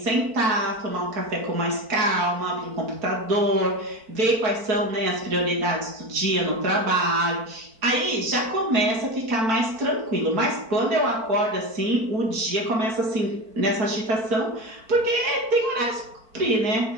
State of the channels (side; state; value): left; late; 4.5 ms